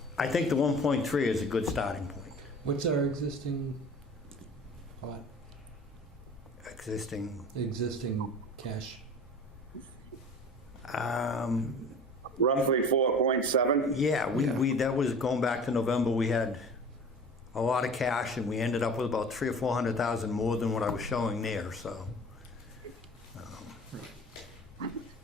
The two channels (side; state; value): both; normal; correlation 0.41